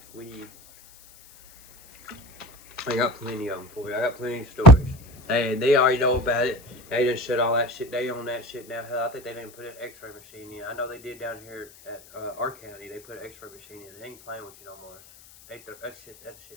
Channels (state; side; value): noise; left; hiss, 23 dB below the sound